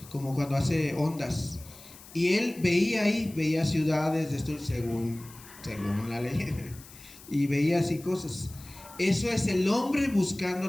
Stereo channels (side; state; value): left; noise; hiss, 20 dB below the sound